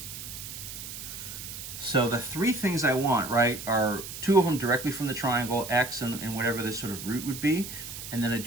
So the 3 things I want, right, are 2 of them directly from the triangle, x and whatever this sort of root would be. And then I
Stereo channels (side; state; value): right; noise; hiss, 9 dB below the sound